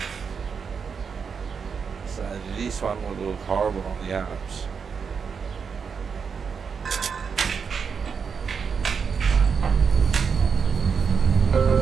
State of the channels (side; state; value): left; quieter; 6.1 dB